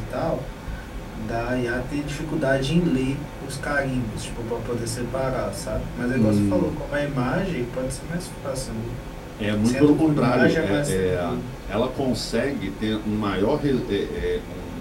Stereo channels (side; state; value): both; identical; correlation 1.00